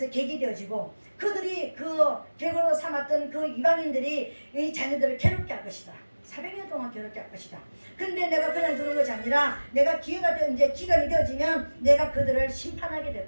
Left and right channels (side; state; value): both; inverted; correlation -1.00